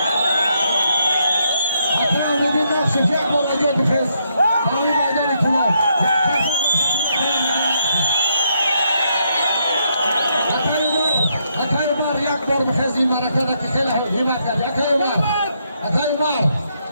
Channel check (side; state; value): both; inverted; correlation -0.76